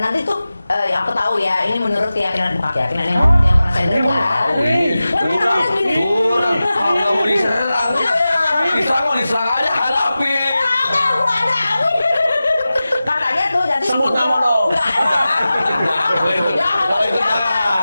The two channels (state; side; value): inverted; both; correlation -0.95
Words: nanti tuh yang aku tahu ya, ini menurut keyakinan yang pernah saya dengar. Kurang. Kalau nggak mau diserang aja hadapi. Katanya tuh jadi Sebut nama dong. Kalau itu